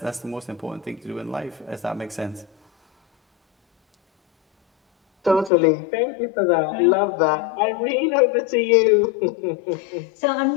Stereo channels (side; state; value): right; drops out; at 5.5 s